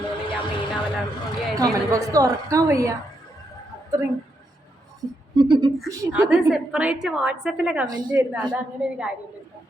ഞാൻ മെയിൻ ആവലാണ്. തുറക്കാൻ വയ്യ അത്രയും. അത് സെപ്പറേറ്റ് വാട്സാപ്പിലെ കമന്റ് വരുന്നത്. അത് അങ്ങനെ ഒരു കാര്യമില്ല.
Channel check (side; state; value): both; normal; correlation 0.80